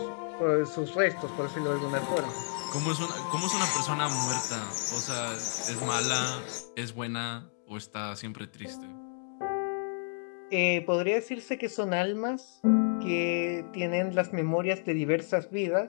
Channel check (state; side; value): silent; right; digital silence